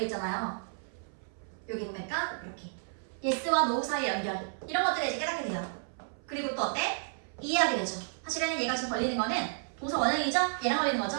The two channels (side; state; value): left; silent; 56 dB below the other